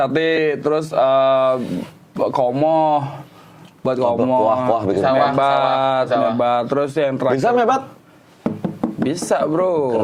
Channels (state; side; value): identical; both; correlation 1.00